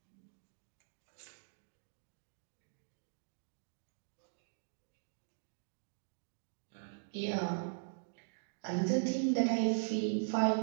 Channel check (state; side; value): silent; left; digital silence